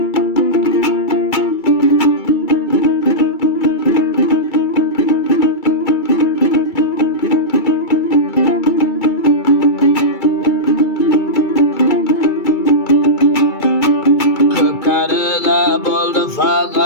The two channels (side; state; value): right; late; 2.3 ms